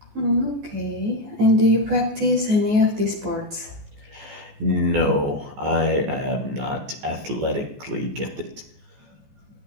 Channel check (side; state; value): left; late; 14 ms